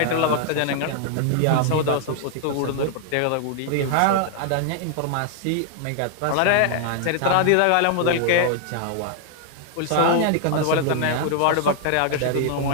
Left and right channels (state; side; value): different; both; correlation 0.00